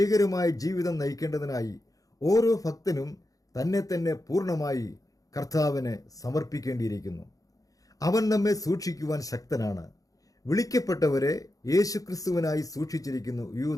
ജീവിതം നയിക്കേണ്ടതിനായി ഓരോ ഭക്തനും തന്നെ തന്നെ പൂർണ്ണമായി കർത്താവിന് സമർപ്പിക്കേണ്ടിയിരിക്കുന്നു. അവൻ നമ്മെ സൂക്ഷിക്കുവാൻ ശക്തനാണ്. വിളിക്കപ്പെട്ടവരെ യേശുക്രിസ്തുവിനായി സൂക്ഷിച്ചിരിക്കുന്നു.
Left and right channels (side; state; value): right; late; 0.17 ms